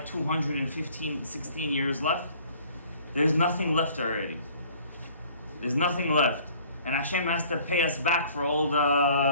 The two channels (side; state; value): both; inverted; correlation -0.54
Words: 16 years left. There's nothing left already. There's nothing left. And Hashem has to pay us back for all